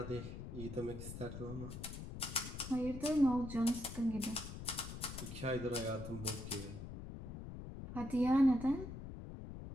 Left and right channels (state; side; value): noise; left; rumble, 9 dB below the sound